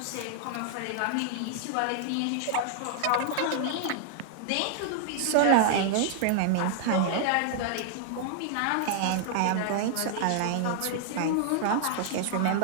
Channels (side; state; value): both; different; correlation -0.01